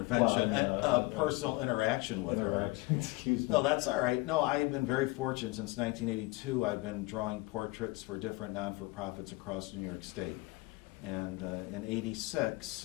Well, a personal interaction with her. Excuse me. No, that's all right. No, I've been very fortunate since 1982. I've been drawing portraits for different non-for-profits across New York State. And in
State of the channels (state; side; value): quieter; right; 22.7 dB